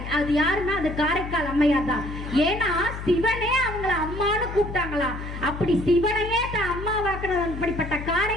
அது யாருன்னா அது காரைக்கால் அம்மையார் தான். ஏன்னா சிவனே அவங்கள அம்மான்னு கூப்பிட்டாங்களாம். அப்படி சிவனையே தான் அம்மா வாக்குறது அப்படிப்பட்ட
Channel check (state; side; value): noise; left; hum, 8 dB below the sound